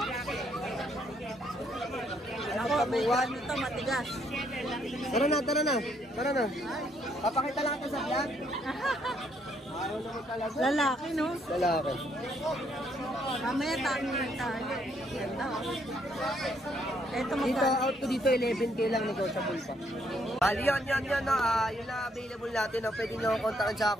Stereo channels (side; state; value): both; normal; correlation 0.71